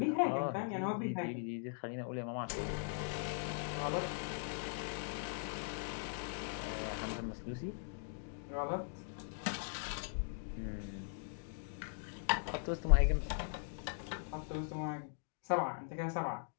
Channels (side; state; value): right; silent; digital silence